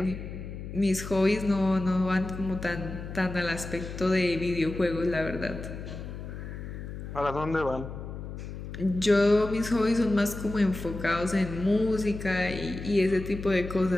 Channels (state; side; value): noise; left; hum, 9 dB below the sound